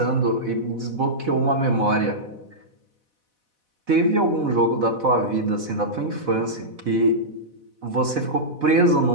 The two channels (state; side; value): late; left; 4.0 ms